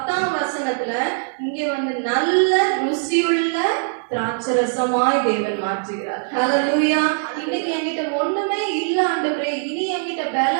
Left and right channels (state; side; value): silent; left; 65 dB below the other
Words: வசனத்துல இங்க வந்து நல்ல ருசியுள்ள திராட்சை ரசமாய் தேவன் மாற்றுகிறார். ஹல்லேலூயா. இன்னைக்கு என்கிட்ட ஒண்ணுமே இல்ல ஆண்டவரே, இனி என்கிட்ட